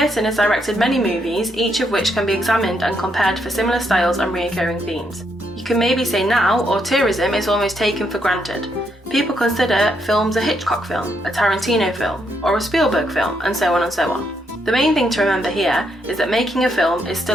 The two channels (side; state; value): both; normal; correlation 0.76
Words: has directed many movies, each of which can be examined and compared for similar styles and recurring themes. You can maybe say now, auteurism is almost taken for granted. People consider films a Hitchcock film, a Tarantino film, or a Spielberg film, and so on and so on. The main thing to remember here is that making a film is